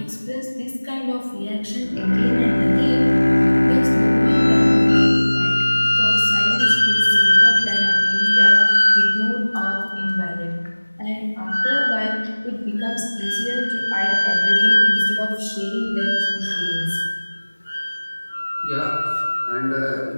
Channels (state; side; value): inverted; both; correlation -1.00